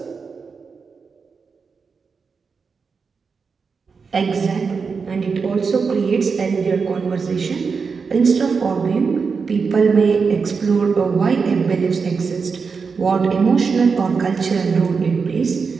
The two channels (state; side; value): quieter; left; 5.3 dB